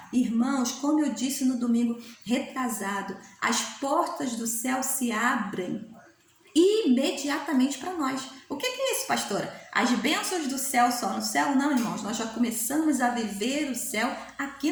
Irmãos, como eu disse no domingo retrasado, as portas do céu se abrem imediatamente para nós. O que é isso, pastora? As bênçãos do céu só no céu? Não, irmãos, nós já começamos a viver o céu aqui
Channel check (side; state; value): both; identical; correlation 1.00